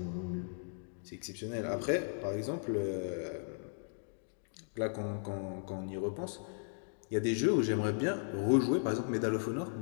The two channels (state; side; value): silent; right; digital silence